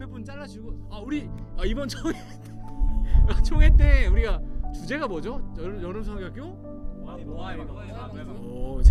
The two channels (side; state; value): both; identical; correlation 1.00